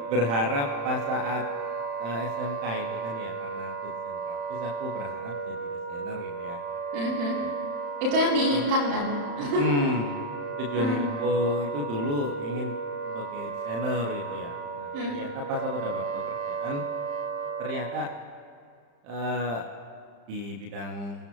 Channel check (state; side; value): late; left; 35 ms